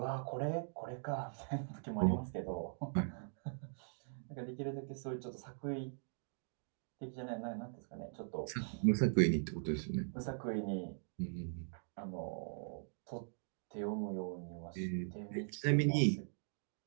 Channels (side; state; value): left; silent; digital silence